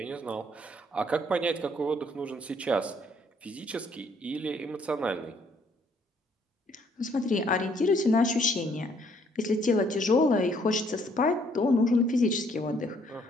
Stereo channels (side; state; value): both; normal; correlation 0.65